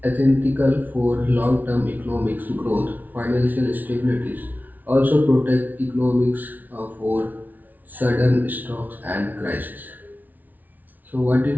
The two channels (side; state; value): left; late; 0.080 ms